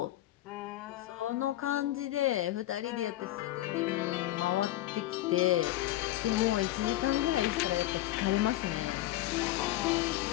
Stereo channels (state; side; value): quieter; right; 15.3 dB